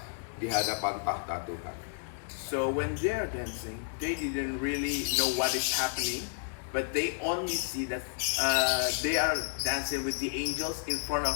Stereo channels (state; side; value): silent; right; digital silence